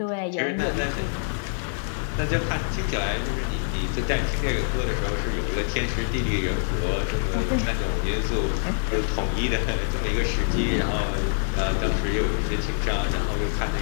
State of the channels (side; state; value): right; silent; digital silence